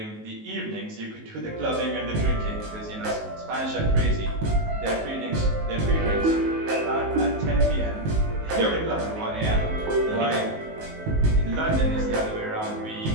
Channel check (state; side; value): late; left; 19 ms